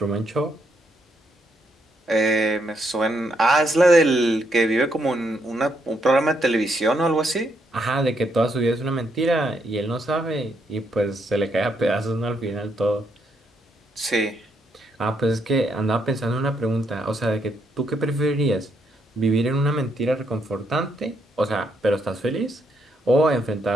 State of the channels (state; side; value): normal; both; correlation 0.76